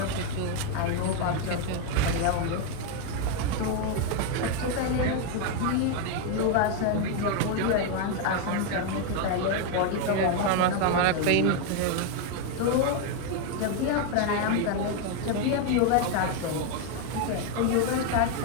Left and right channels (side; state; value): both; different; correlation 0.01